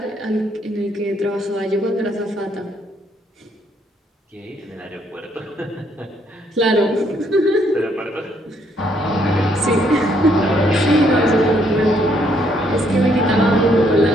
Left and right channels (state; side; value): normal; both; correlation 0.70